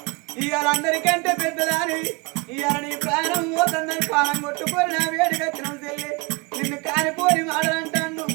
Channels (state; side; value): quieter; left; 27.5 dB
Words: అందరికంటే పెద్దదాని ఇవాళ నీ ప్రాణం పోతుందని పానం కొట్టుకొని నా వేడికి వచ్చిన చెల్లి నిన్ను కానిపోని మాటలంటాను